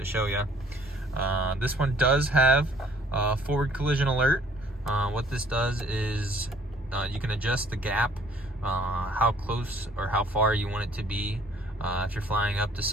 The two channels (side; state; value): both; normal; correlation 0.59